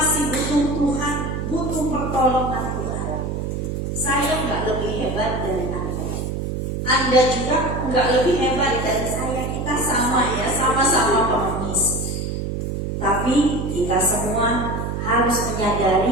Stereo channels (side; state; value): right; noise; hum, 3 dB below the sound